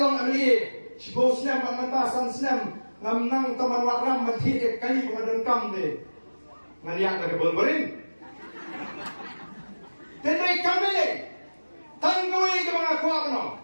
amli sibo snem mata san snem ngam nang taman waram mathiet kali ko kam de ngaliak ka bolborin Tenai kami tanggui ke mga kuat no,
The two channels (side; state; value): both; inverted; correlation -1.00